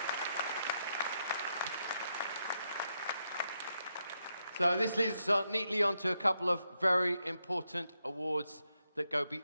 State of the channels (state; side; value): inverted; both; correlation -0.82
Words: So this leads us neatly onto a couple of very important awards that go